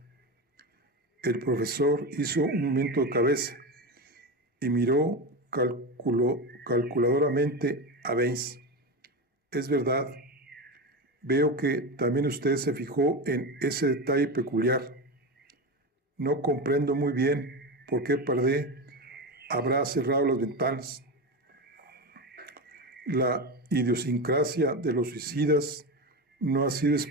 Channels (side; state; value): both; normal; correlation 0.20